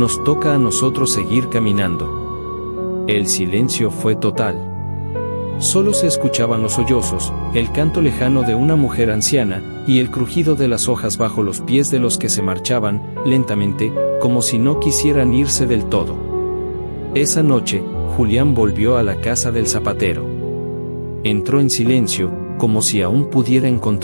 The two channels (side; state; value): both; inverted; correlation -1.00